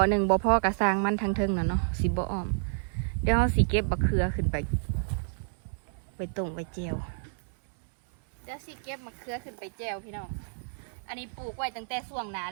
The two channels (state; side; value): silent; left; 58 dB below the other